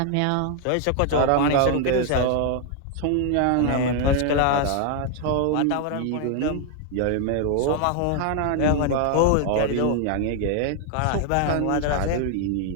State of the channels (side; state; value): both; different; correlation 0.00